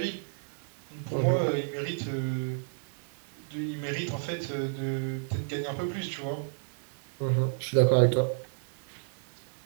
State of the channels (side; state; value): left; silent; digital silence